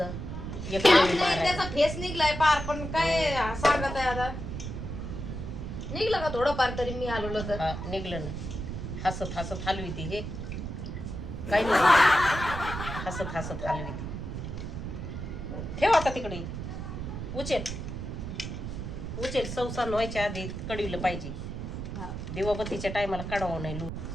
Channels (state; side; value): noise; right; rumble, 6 dB below the sound